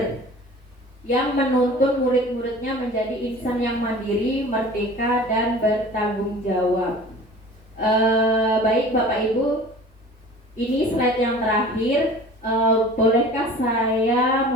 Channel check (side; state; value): both; normal; correlation 0.43